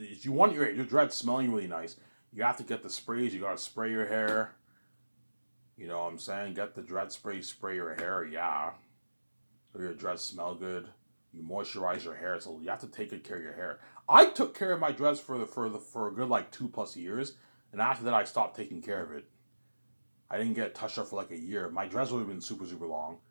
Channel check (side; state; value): both; inverted; correlation -1.00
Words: you want your dreads smelling really nice, you have to get the sprays. You gotta spray your hair. You know what I'm saying? Get the dread spray, spray your hair. Yeah, so your dreads smell good. You moisturize your hair, so you have to take good care of your hair. I took care of my dreads for a good like 2 plus years, and after that I stopped taking care of it. I didn't get touched up for like a year. My dreads would have been super long.